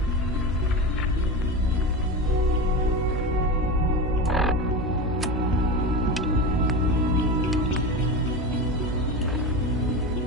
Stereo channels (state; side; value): normal; both; correlation 0.24